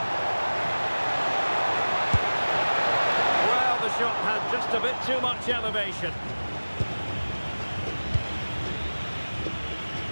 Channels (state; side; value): inverted; both; correlation -1.00